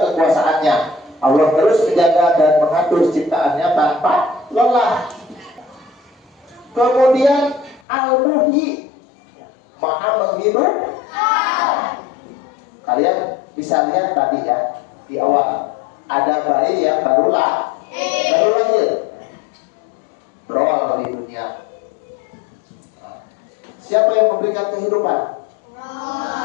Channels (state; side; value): drops out; right; at 7.8 s